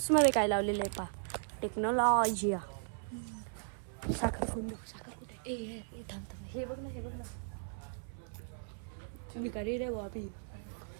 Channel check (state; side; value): silent; left; 53 dB below the other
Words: मध्ये काय लावलेलं आहे पा. टेक्नॉलॉजी. साखर फोन देऊ. साखर कुठे? हे बघ ना, हे बघ ना. भिकारी रे बाबी.